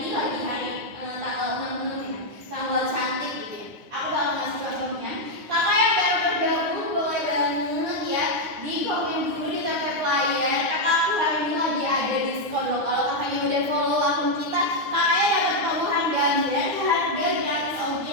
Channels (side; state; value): left; late; 9.7 ms